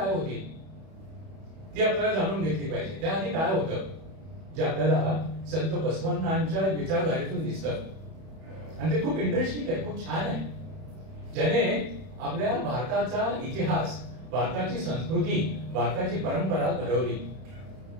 होती ती आपल्याला जाणून घेतली पाहिजे. त्याआधी काय होतं जे आपल्याला संत बसवण्णांच्या विचारधारेतून दिसतं, आणि ते खूप इंटरेस्टिंग आहे, खूप छान आहे, ज्याने आपल्या भारताचा इतिहास, भारताची संस्कृती, भारताची परंपरा घडवली.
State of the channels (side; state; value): left; late; 31 ms